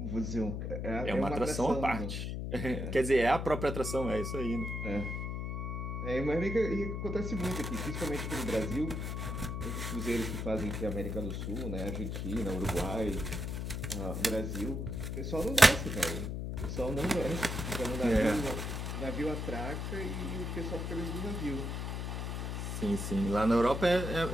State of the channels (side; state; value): left; noise; hum, 3 dB below the sound